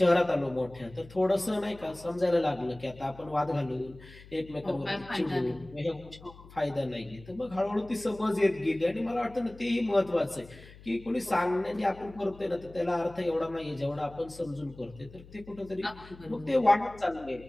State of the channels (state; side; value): noise; left; hum, 20 dB below the sound